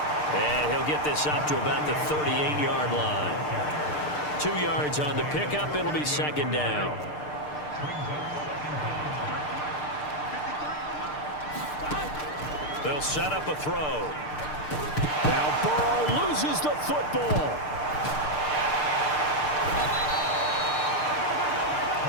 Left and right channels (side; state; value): right; late; 6.7 ms